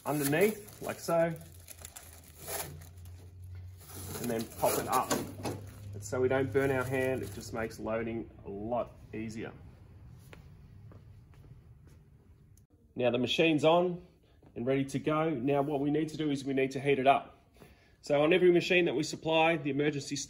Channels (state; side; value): identical; both; correlation 1.00